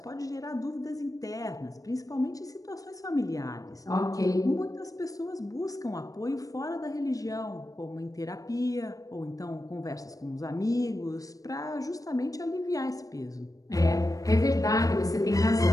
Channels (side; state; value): right; late; 0.17 ms